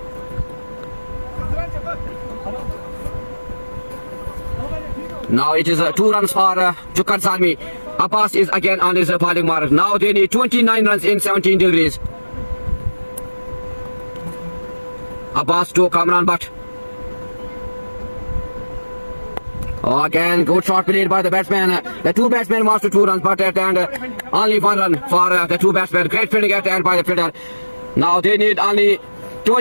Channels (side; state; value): both; inverted; correlation -1.00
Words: now it is 2 runs for Chukkar Salmi. Abbas is again on his bowling mark. Now they need 29 runs in 17 degrees. Abbas to Kamran Butt. Oh, again, good shot played by the batsman. The 2 batsmen wants to 2 runs, but at the end, only 1 run for the 2 batsmen. Great fielding at the end by the fielder. Now they need only